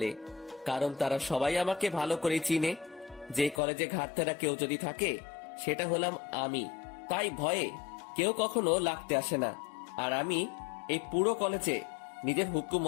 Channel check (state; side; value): drops out; right; at 3.6 s